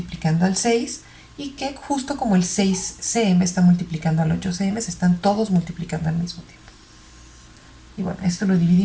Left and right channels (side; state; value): both; identical; correlation 1.00